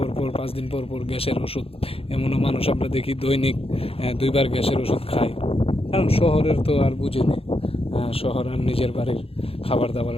পর 5 দিন পর পর গ্যাসের ওষুধ। এমনও মানুষ আমরা দেখি দৈনিক 2 বার গ্যাসের ওষুধ খায়। কারণ শহরের তো আর বুঝিনি, শহর আর নিজের বাড়ির খাবার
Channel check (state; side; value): late; right; 0.28 ms